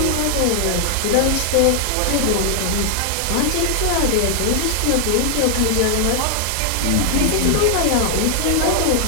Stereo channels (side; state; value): both; different; correlation 0.00